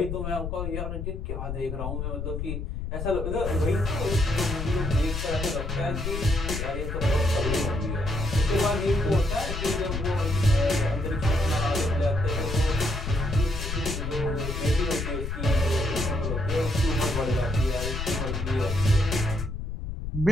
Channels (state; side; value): noise; left; rumble, 4 dB below the sound